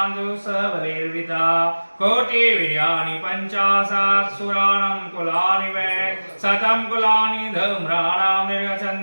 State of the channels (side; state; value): both; inverted; correlation -1.00